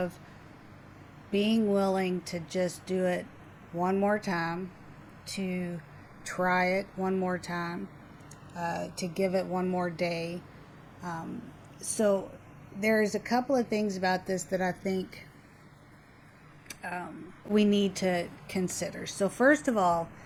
being willing to just do it one more time, to try it one more time, to give it one more day. So there's a couple of things about this that I think we need to consider. So first of all,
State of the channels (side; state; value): both; identical; correlation 1.00